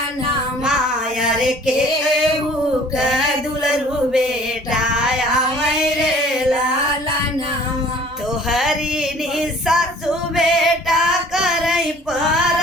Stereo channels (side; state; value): both; normal; correlation 0.51